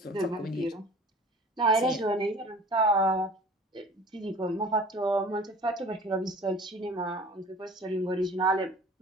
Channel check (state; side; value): normal; both; correlation 0.45